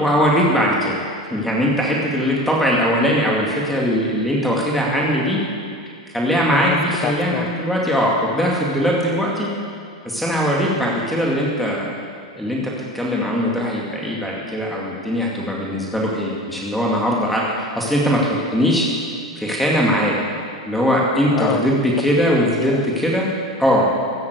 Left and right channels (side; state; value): both; normal; correlation 0.41